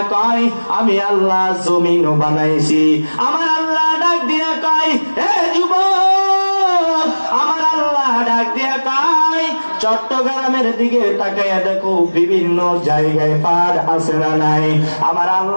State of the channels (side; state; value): both; inverted; correlation -1.00